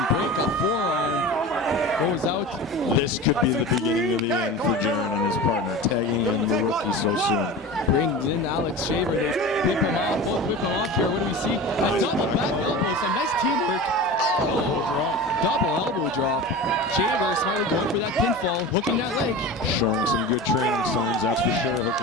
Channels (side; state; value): both; normal; correlation 0.32